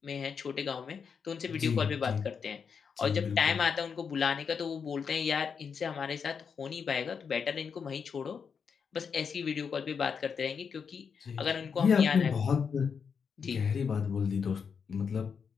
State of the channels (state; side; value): quieter; right; 6.3 dB